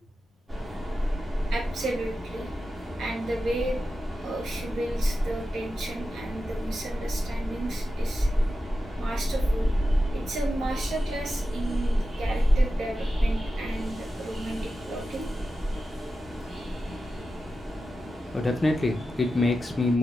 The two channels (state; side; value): normal; both; correlation 0.92